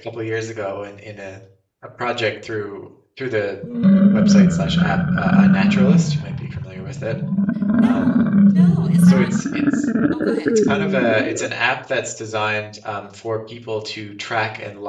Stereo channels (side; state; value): both; identical; correlation 1.00